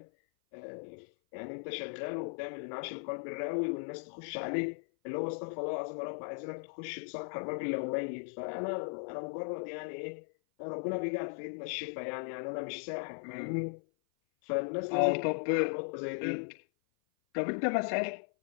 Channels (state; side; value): silent; right; 53 dB below the other